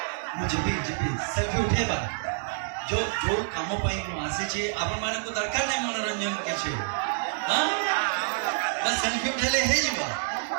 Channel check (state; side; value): silent; left; 57 dB below the other